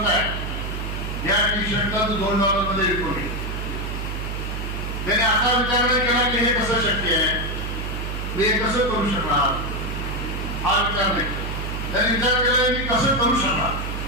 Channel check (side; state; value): right; noise; hum, 4 dB below the sound